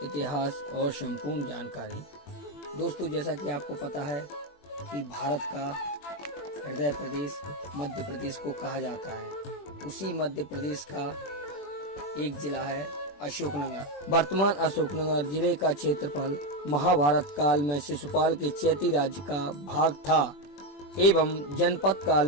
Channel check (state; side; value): late; right; 21 ms